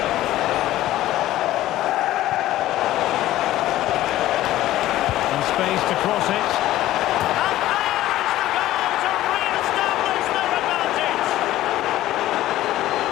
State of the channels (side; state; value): right; quieter; 14.8 dB